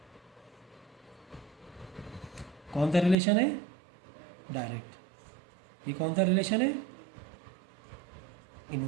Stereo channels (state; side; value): drops out; left; at 3.2 s